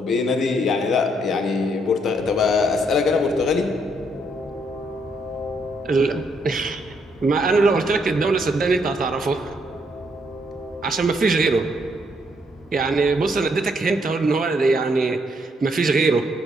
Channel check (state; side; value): normal; both; correlation 0.73